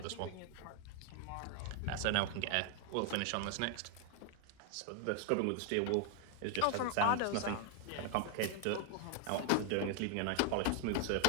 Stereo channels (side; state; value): both; different; correlation 0.00